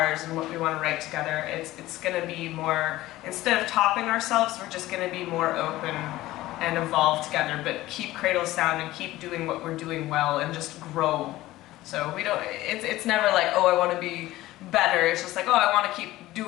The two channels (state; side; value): quieter; right; 16.8 dB